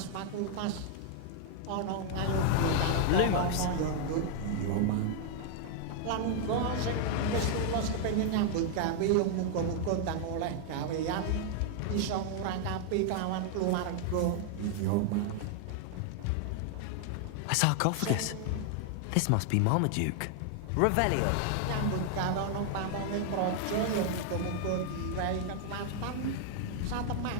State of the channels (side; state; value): both; different; correlation 0.00